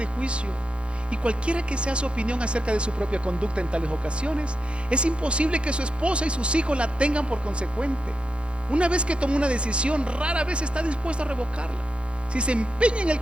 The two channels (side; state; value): left; late; 0.057 ms